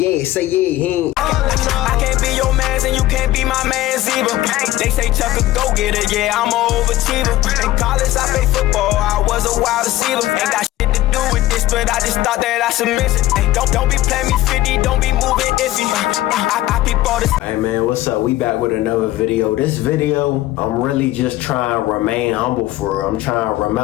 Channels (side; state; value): right; quieter; 15.9 dB